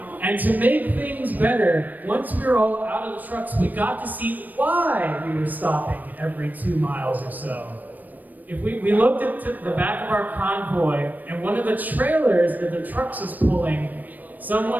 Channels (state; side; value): late; left; 0.085 ms